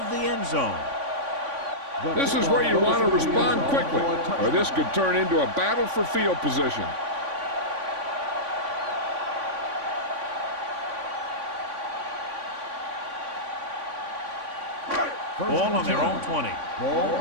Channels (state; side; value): late; left; 3.5 ms